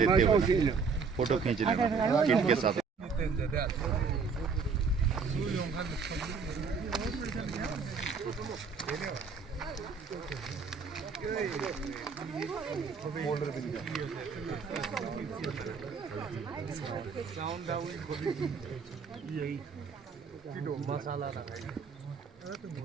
हो, फोटो खींच रहे किट के साथ। मसाला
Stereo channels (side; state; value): left; quieter; 5.3 dB